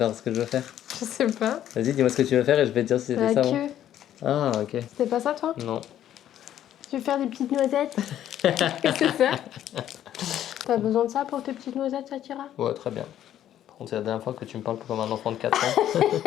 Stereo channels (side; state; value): right; quieter; 11.3 dB